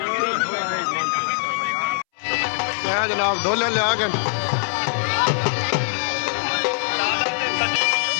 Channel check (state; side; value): silent; right; 64 dB below the other